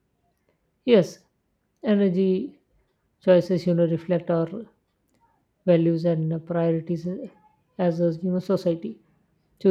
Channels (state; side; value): identical; both; correlation 1.00